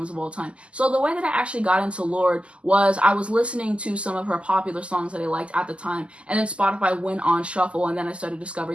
of all time. So the way that I actually got into Lorde was I was listening to some of her popular songs that I liked at the time, and then Spotify went on shuffle, and then I started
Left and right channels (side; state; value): left; late; 0.055 ms